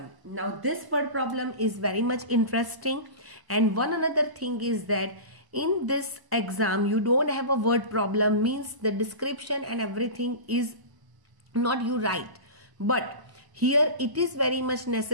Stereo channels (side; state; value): left; late; 1.0 ms